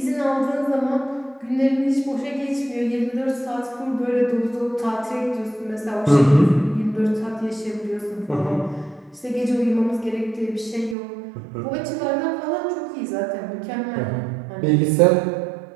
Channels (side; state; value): left; drops out; at 11.0 s